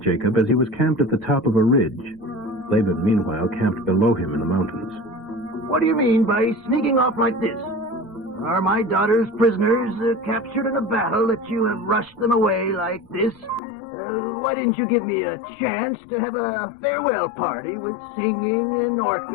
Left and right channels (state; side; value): drops out; right; at 13.6 s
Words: as he was camped at the top of a ridge. Laban, meanwhile, camped below him in the mountains. What do you mean by sneaking off like this? Are my daughters prisoners captured in a battle that you have rushed them away like this? Why didn't you give me a chance to have a farewell party with singing and